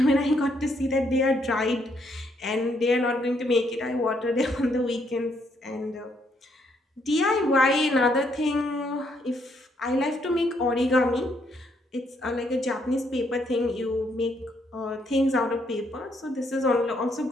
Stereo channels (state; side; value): normal; both; correlation 0.72